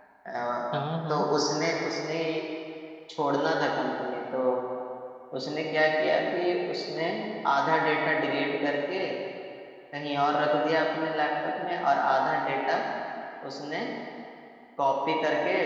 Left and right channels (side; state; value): both; identical; correlation 1.00